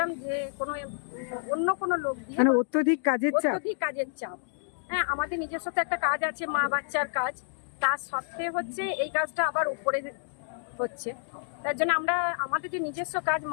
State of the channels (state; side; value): silent; right; digital silence